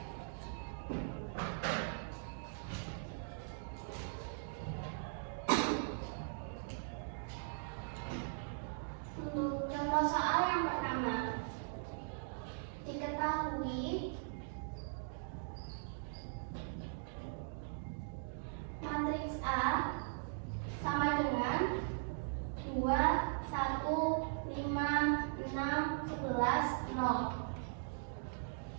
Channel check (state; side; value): silent; left; digital silence